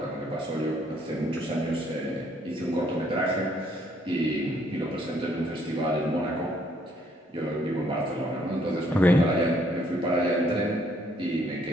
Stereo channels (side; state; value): both; normal; correlation 0.67